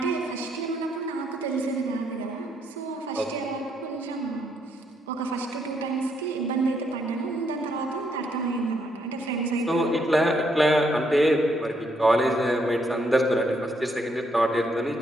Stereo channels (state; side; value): normal; both; correlation 0.74